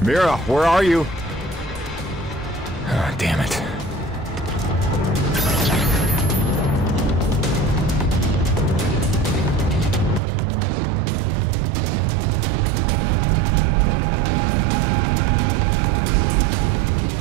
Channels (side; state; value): left; drops out; at 10.2 s